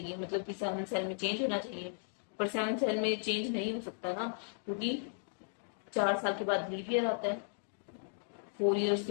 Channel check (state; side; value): silent; right; digital silence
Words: मतलब कि 7 सेल में चेंज होना चाहिए। पर 7 सेल में चेंज नहीं हो सकता ना, क्योंकि 4 साल के बाद लीप ईयर आता है, 4 ईयर्स